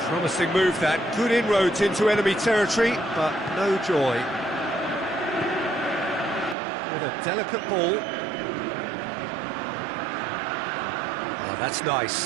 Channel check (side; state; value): left; drops out; at 6.6 s